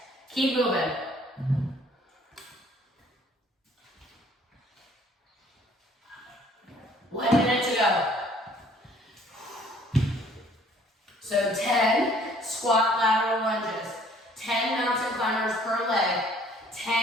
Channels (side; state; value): both; normal; correlation 0.58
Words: Keep moving. One minute to go. So 10 squat lateral lunges, 10 mountain climbers per leg,